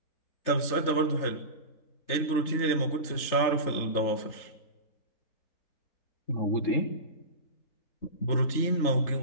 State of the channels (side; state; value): right; late; 3.4 ms